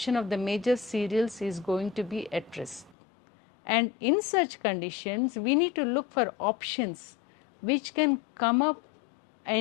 of the major cereals is going to be at risk. And in such conditions, we need to look for options which can come up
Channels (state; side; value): drops out; right; at 3.0 s